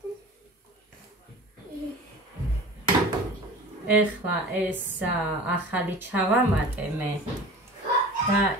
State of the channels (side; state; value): both; normal; correlation 0.39